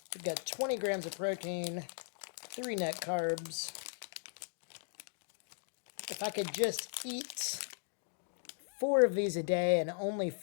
We've got 20 grams of protein, 3 net carbs. If I could just eat 4 of these a day, and only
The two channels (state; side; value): silent; right; digital silence